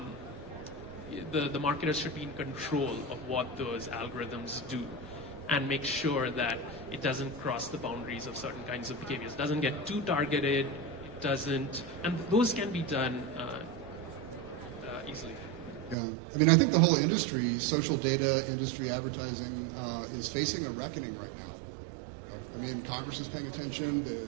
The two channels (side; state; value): left; drops out; at 16.0 s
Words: the marketers should be in control of what those algorithms do, and make sure that it doesn't cross the boundaries of certain kinds of behaviors. It doesn't get too targeted. It doesn't, and those can be done easily. Yeah, I mean, I think the whole industry, social data industry, advertising, is facing a reckoning right now. I mean, Congress is paying attention. The